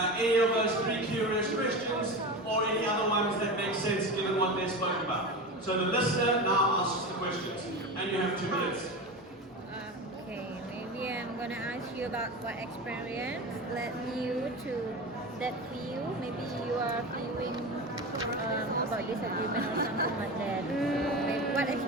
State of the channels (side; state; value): both; normal; correlation 0.26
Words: any of those 3 curious questions or any other ones that make sense given what they spoke about. So the listener now asks the questions, and you have 2 minutes. Okay, maybe I'm gonna ask you about what experience led you to that view. Maybe you are feeling about disagreement or something like that. Maybe what